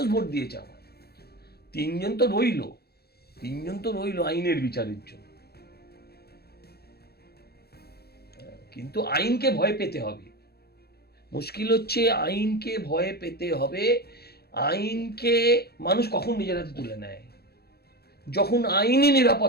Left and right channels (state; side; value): late; right; 0.46 ms